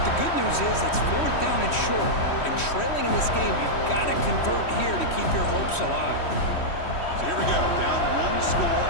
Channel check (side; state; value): right; late; 3.1 ms